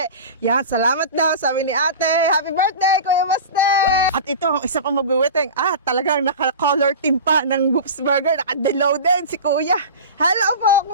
Yan, salamat daw, sabi ni ate. Happy birthday, Kuya Baste! At ito, ang isa pang magwiwiting. Talagang naka-color team pa ng Whoops Burger. Naka-delaw din si Kuya. Hello po,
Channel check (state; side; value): inverted; both; correlation -0.31